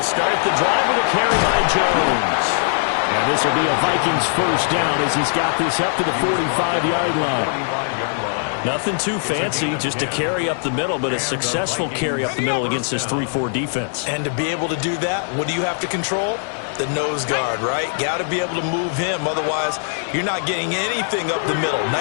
start the drive with a carry by Jones. And this will be a Vikings first down as he's got this up to the 45-yard line. Nothing too fancy, just a carry up the middle, but a successful carry up the middle against this 3-4 defense. And to be able to do that, what do you have to control? The nose guard, right? Got to be able to move him. Otherwise, you're not getting anything up the middle.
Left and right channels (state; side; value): silent; right; digital silence